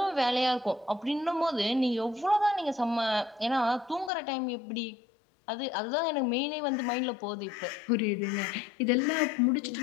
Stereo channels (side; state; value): right; drops out; at 4.1 s